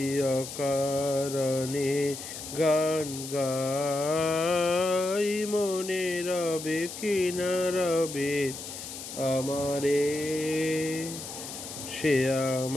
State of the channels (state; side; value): noise; left; hiss, 10 dB below the sound